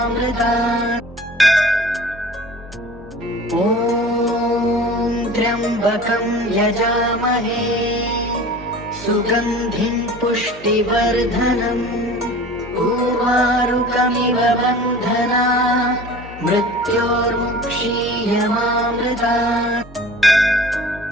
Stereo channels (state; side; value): normal; both; correlation 0.42